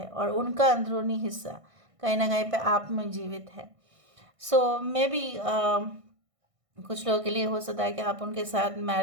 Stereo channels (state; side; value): late; left; 1.6 ms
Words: और उनका अंदरूनी हिस्सा कहीं ना कहीं पे आप में जीवित है. सो मे बी कुछ लोगों के लिए हो सकता है कि आप उनके साथ